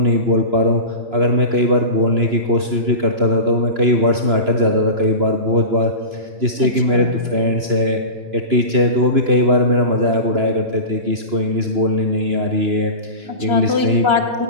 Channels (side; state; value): left; late; 2.9 ms